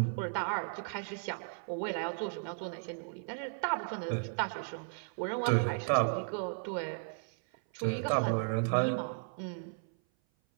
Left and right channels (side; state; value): left; silent; 54 dB below the other